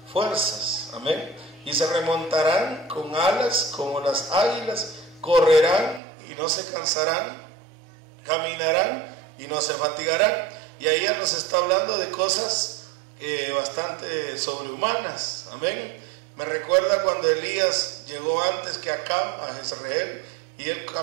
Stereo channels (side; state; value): left; drops out; at 6.0 s